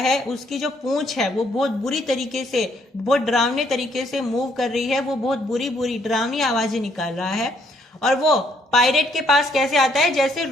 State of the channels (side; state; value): both; normal; correlation 0.69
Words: है। उसकी जो पूंछ है वो बहुत बुरी तरीके से, बहुत डरावने तरीके से मूव कर रही है, वो बहुत बुरी बुरी डरावनी आवाजें निकाल रहा है। और वो पायरेट के पास कैसे आता है? जैसे